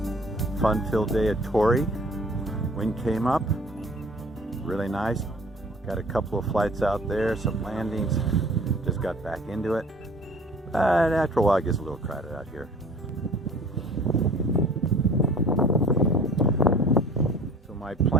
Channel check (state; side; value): normal; both; correlation 0.48